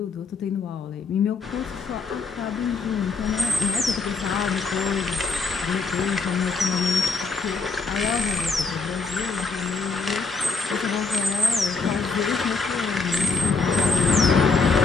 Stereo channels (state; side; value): quieter; right; 4.3 dB